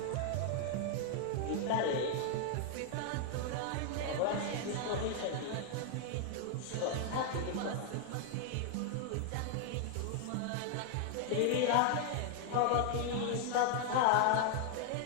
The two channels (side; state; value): both; different; correlation 0.00